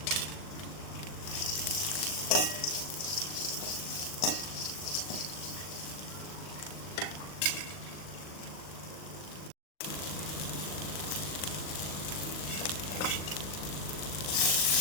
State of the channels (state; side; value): late; right; 39 ms